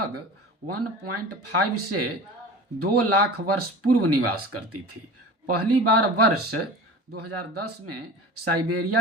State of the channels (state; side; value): normal; both; correlation 0.35